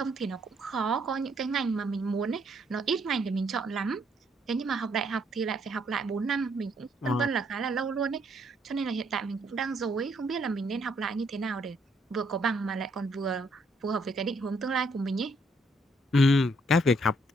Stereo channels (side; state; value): both; normal; correlation 0.70